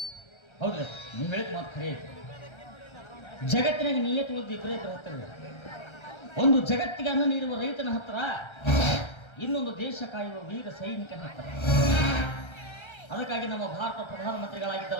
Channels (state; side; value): late; right; 1.3 ms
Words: ಹೌದ್ರಿ, ನೀವು ಹೇಳಿದ ಮಾತು ಖರೆ ಐತಿ. ಜಗತ್ತಿನಾಗ ನಿಯತವಾದ ಇಬ್ಬರೇ ಹತ್ತಿರ, ಒಂದು ಜಗತ್ತಿಗೆ ಅನ್ನ ನೀಡುವ ರೈತನ ಹತ್ರ, ಇನ್ನೊಂದು ದೇಶ ಕಾಯುವ ವೀರ ಸೈನಿಕನ ಹತ್ರ. ಅದಕ್ಕಾಗಿ ನಮ್ಮ ಭಾರತ ಪ್ರಧಾನಮಂತ್ರಿಗಳಾಗಿದ್ದ